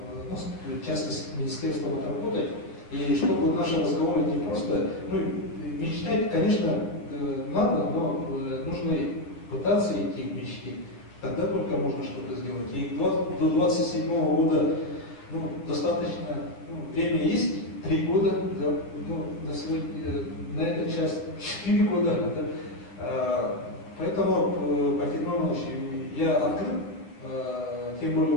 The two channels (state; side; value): late; right; 9.4 ms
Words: ну, в частности, с министерством отработать, и чтобы наши разговоры не просто, ну, мечтать, конечно, надо, но нужно пытаться идти к мечте. Тогда только можно что-то сделать. И до 27 года, ну, достаточно, ну, время есть, 3 года, да, ну, на сегодня, на эту часть 4 года. Да. Поэтому, Пантелеймон Иванович, я открыт, тем более у